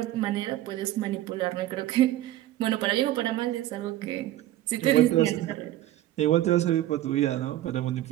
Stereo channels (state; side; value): quieter; left; 14.4 dB